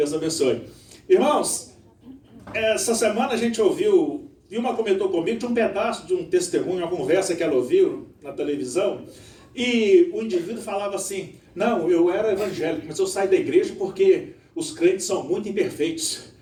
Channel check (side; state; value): both; identical; correlation 1.00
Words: abençoe. Irmãos, essa semana a gente ouviu, Vilma comentou comigo, de um pedaço de um testemunho, uma conversa que ela ouviu na televisão, e o indivíduo falava assim: não, eu era evangélico, mas eu saí da igreja porque os crentes são muito imperfeitos.